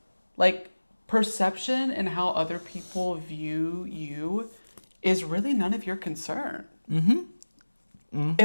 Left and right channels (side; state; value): both; inverted; correlation -1.00